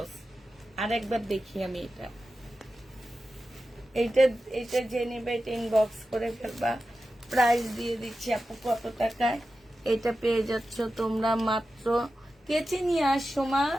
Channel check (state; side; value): normal; both; correlation 0.93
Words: আর একবার দেখি আমি এটা, এইটা এইটা যে নেবে এটা ইনবক্স করে ফেলবা। প্রাইস দিয়ে দিচ্ছি আপু কত টাকায়। এটা পেয়ে যাচ্ছ তোমরা মাত্র, কেচে নিয়ে আসো মা।